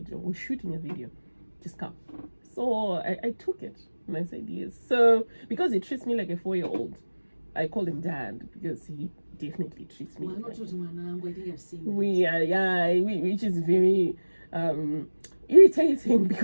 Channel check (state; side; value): inverted; both; correlation -1.00